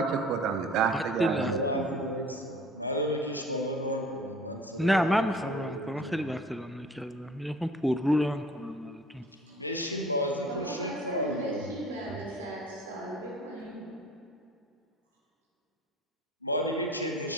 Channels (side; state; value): both; normal; correlation 0.47